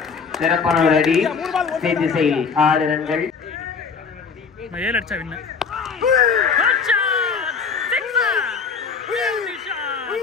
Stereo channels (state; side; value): quieter; right; 5.6 dB